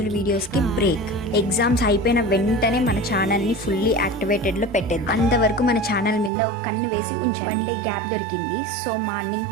వీడియోస్ కి బ్రేక్. ఎగ్జామ్స్ అయిపోయిన వెంటనే మన ఛానల్ ని ఫుల్లీ యాక్టివేటెడ్ లో పెట్టేది. అంతవరకు మన ఛానల్ మీద ఒక కన్ను వేసి ఉంచాను. 1 డే గ్యాప్ దొరికింది. So morning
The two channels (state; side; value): drops out; left; at 6.3 s